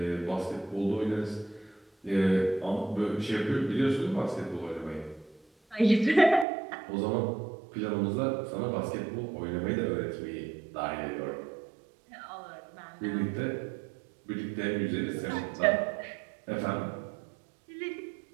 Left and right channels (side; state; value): left; drops out; at 6.5 s